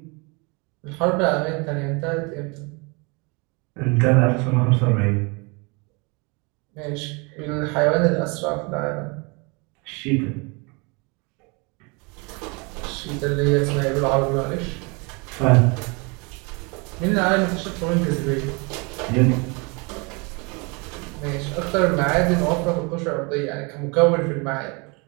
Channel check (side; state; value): left; quieter; 30.0 dB